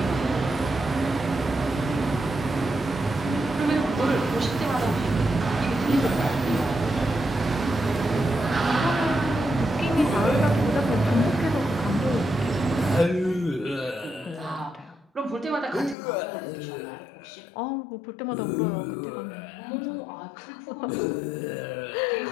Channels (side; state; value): right; drops out; at 16.0 s